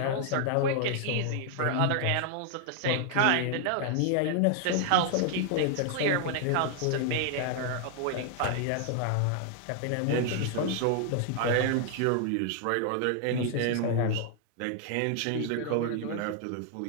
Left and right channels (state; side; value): different; both; correlation 0.00